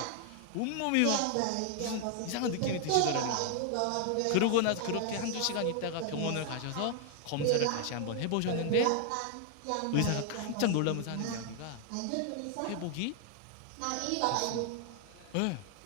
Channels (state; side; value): different; both; correlation 0.00